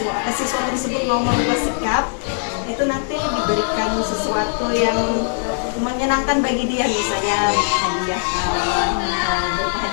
tersebut mau merubah sikap, itu nanti diberikan sesuatu yang menyenangkan bagi dia, misalnya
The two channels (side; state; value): right; silent; digital silence